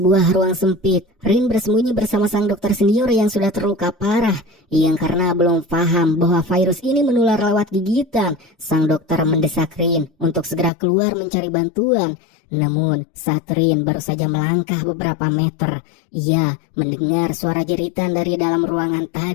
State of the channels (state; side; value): drops out; right; at 10.7 s